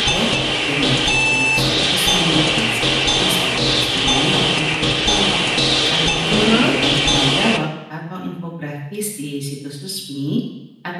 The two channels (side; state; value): both; identical; correlation 1.00